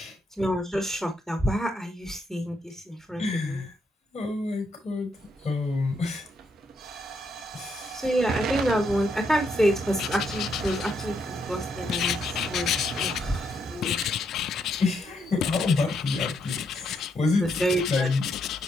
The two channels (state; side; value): normal; both; correlation 0.77